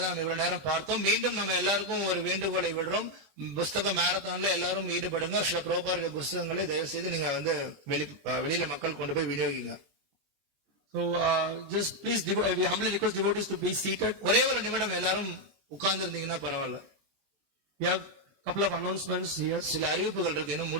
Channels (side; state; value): left; late; 20 ms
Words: நம்ம இவ்வளவு நேரம் பார்த்தோம். மீண்டும் நம்ம எல்லாருக்கும் ஒரு வேண்டுகோளை விடுறோம். புஸ்தக மேரத்தான்ல எல்லாரும் ஈடுபடுங்க. ஸ்ரீ பிரபுபாதருடைய புஸ்தகங்களை தயவு செய்து நீங்க வெளியில மக்கள் கொண்டு போய் விநியோகிங்க. So just please we humbly request devotees to be seated. ஒரே ஒரு நிமிடம் எல்லாரும் உட்கார்ந்து இருந்தீங்கன்னா பரவாயில்ல. We have couple of announcements here. சில அறிவிப்புகள் இருக்கு, இன்னும்